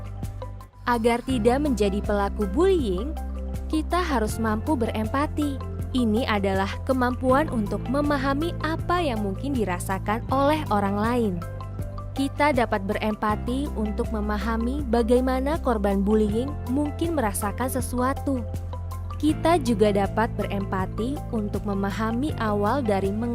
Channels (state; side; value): identical; both; correlation 1.00